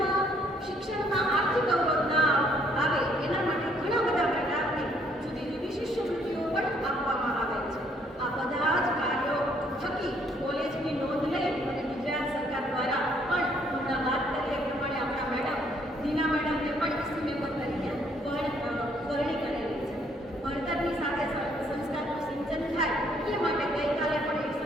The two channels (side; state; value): both; normal; correlation 0.66